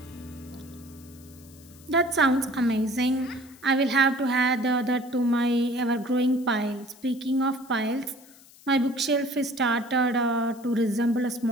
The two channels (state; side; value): noise; left; hiss, 24 dB below the sound